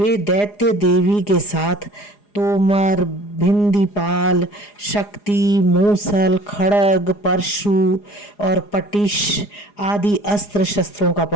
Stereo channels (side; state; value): right; late; 4.9 ms